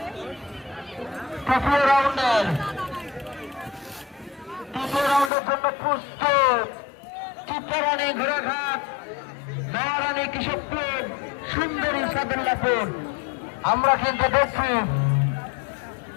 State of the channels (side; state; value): right; drops out; at 5.3 s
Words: চিত্রারানী ঘোড়াঘাট নয়ারানী কৃষকপুর সুন্দরী সাদুল্লাপুর আমরা কিন্তু দেখছি